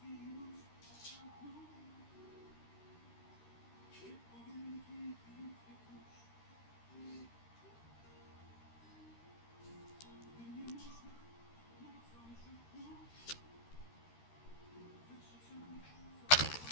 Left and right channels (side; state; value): right; late; 13 ms